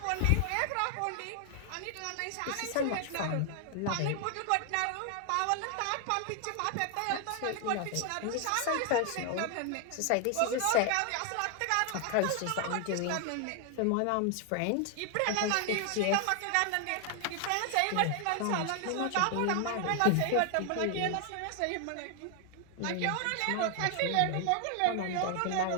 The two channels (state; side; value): different; both; correlation 0.00